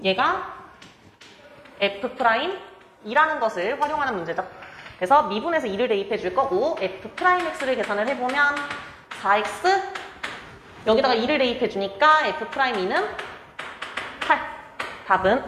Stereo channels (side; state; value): both; identical; correlation 1.00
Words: 얘가 f'이라는 것을 활용하는 문제죠. 그래서 미분에서 2를 대입해 줄 거고 f'x를 계산을 해보면 4x 여기다가 2를 대입해 주니까 f'2는 8 답은